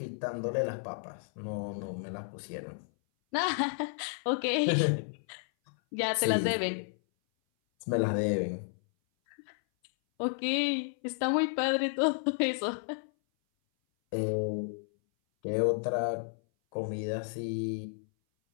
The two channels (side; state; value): right; silent; 56 dB below the other